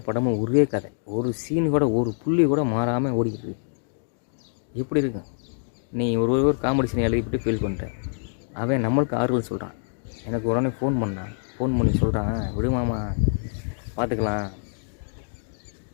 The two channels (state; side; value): silent; right; digital silence